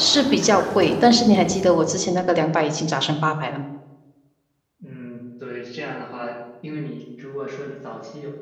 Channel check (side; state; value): both; identical; correlation 1.00